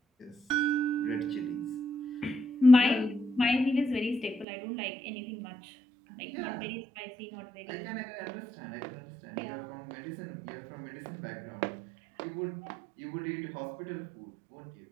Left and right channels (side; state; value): left; drops out; at 4.5 s